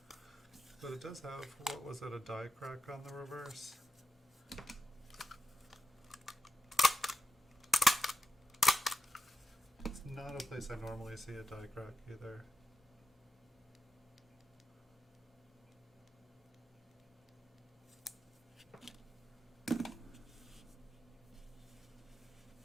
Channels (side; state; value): both; normal; correlation 0.89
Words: But it does have, what was it, a die crack on the reverse? It's not a place I normally see a die crack either.